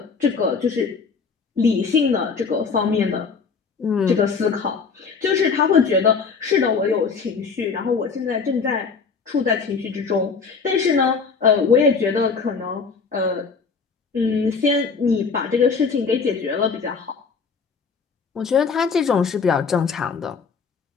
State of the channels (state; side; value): quieter; right; 5.2 dB